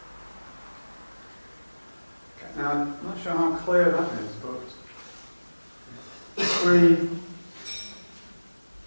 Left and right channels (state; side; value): inverted; both; correlation -1.00